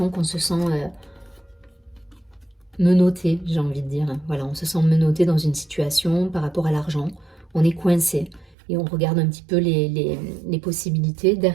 qu'on se sent menotté, j'ai envie de dire. Voilà, on se sent menotté dans une situation par rapport à l'argent. On est coincé et on regarde un petit peu les possibilités.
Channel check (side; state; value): left; drops out; at 8.6 s